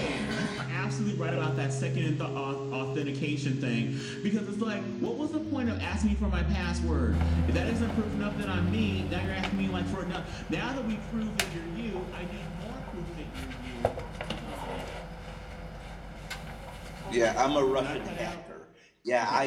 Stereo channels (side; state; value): both; identical; correlation 1.00